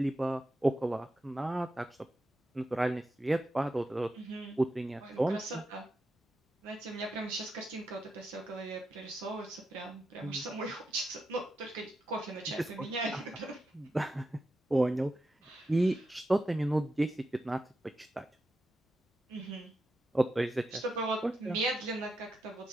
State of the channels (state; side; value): normal; both; correlation 0.87